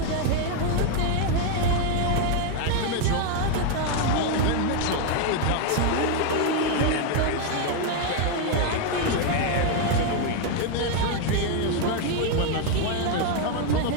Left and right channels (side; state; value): both; different; correlation 0.01